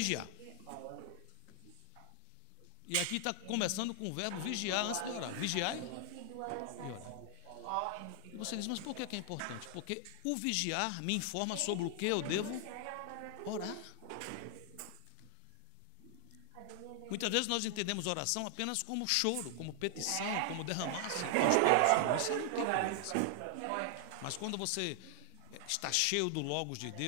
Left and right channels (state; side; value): different; both; correlation 0.00